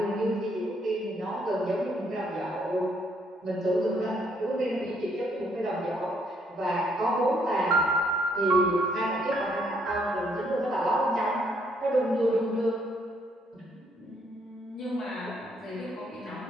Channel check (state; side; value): normal; both; correlation 0.70